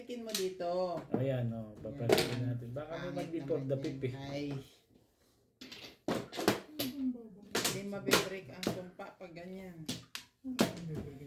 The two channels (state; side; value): identical; both; correlation 1.00